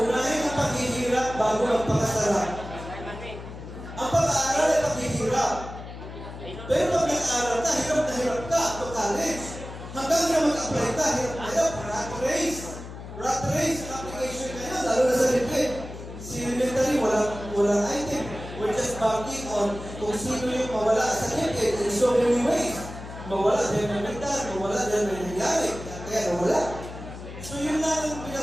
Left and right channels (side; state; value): left; noise; hum, 12 dB below the sound